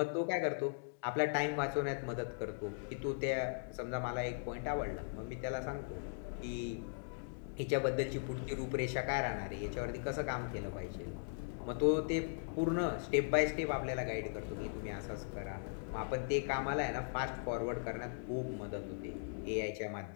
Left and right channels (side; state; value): right; silent; digital silence